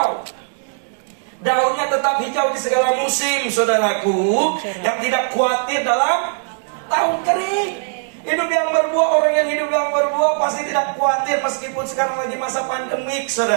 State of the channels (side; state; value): left; silent; digital silence